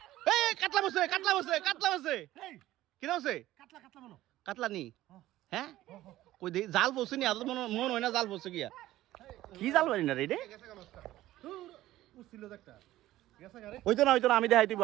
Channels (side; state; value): left; quieter; 15.2 dB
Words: কাটলা বসে কি বসে কাটলা নি হ্যাঁ কই দে জাল বসে নি আদর মন হয় না জাল বসে গিয়া কি জাল বানি না রে ওই তো না আমি দেখাই দিব